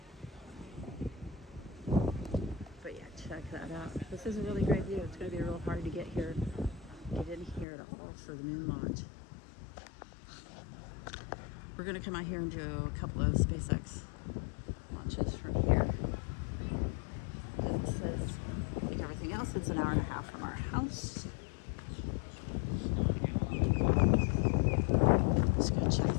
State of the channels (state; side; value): drops out; right; at 7.7 s